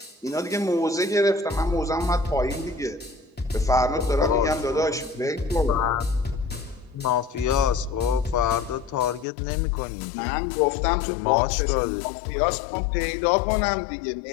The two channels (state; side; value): drops out; right; at 9.2 s